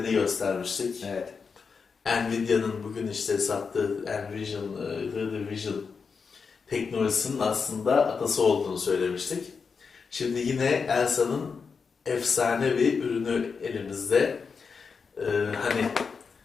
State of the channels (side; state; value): right; quieter; 5.4 dB